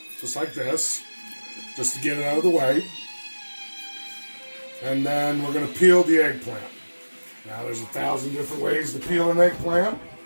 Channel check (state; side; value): inverted; both; correlation -1.00